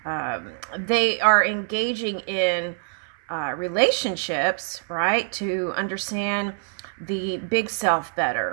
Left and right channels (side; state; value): left; silent; 62 dB below the other